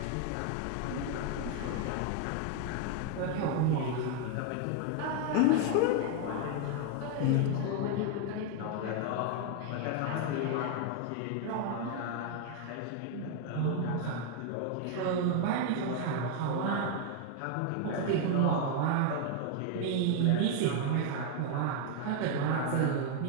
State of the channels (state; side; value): different; both; correlation 0.01